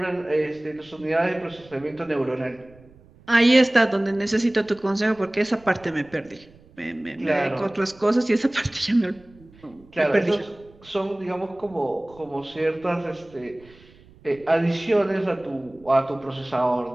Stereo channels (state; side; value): noise; right; rumble, 26 dB below the sound